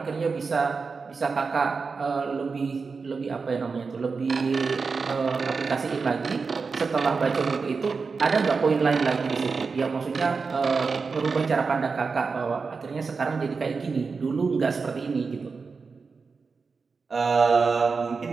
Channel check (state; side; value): quieter; left; 4.8 dB